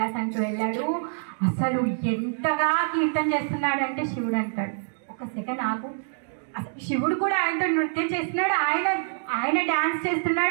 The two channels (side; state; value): left; silent; digital silence